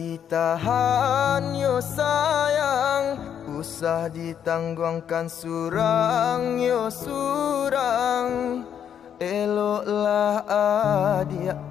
yo sayang, usah ditangguhkan surang yo surang. Eloklah adia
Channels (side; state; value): right; quieter; 8.8 dB